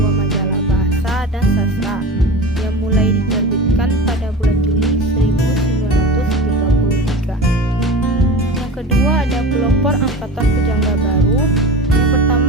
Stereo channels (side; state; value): both; normal; correlation 0.31